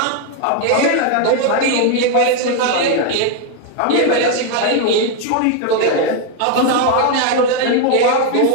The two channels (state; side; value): different; both; correlation 0.01